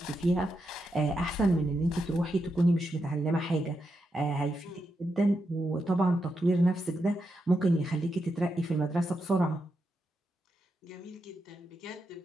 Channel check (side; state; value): both; normal; correlation 0.85